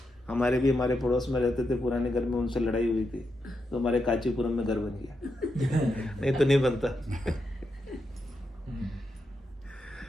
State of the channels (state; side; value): normal; both; correlation 0.85